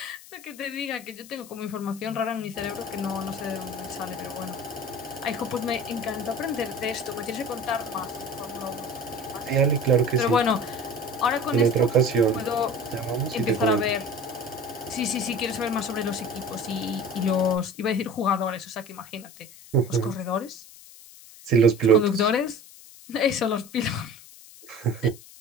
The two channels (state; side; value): noise; left; hiss, 19 dB below the sound